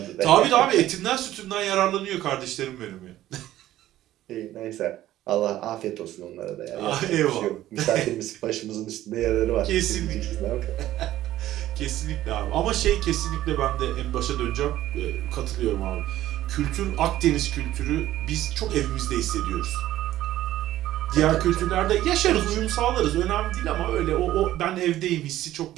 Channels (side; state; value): left; quieter; 14.0 dB